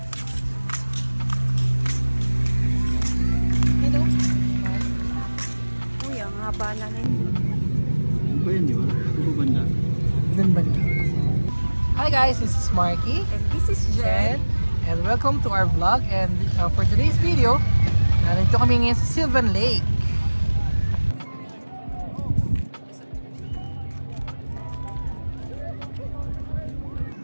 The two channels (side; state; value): both; inverted; correlation -1.00